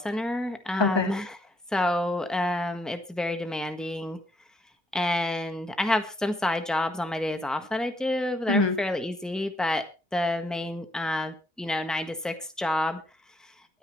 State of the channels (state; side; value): normal; both; correlation 0.72